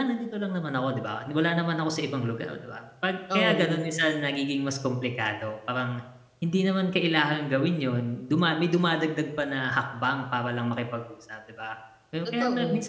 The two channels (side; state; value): both; identical; correlation 1.00